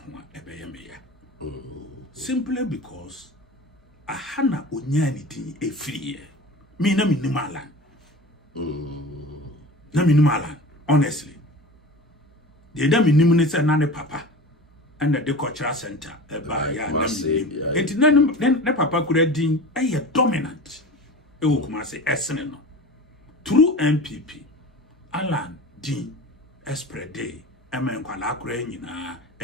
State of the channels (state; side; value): normal; both; correlation 0.35